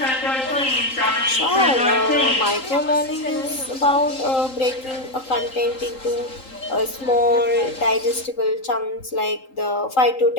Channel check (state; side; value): late; right; 3.8 ms